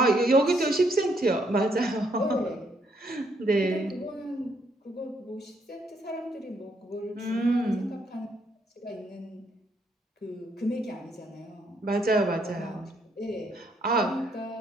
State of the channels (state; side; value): normal; both; correlation 0.72